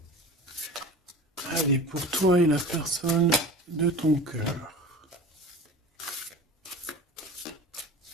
Allez, pour toi et la personne de ton cœur.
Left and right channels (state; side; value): normal; both; correlation 0.36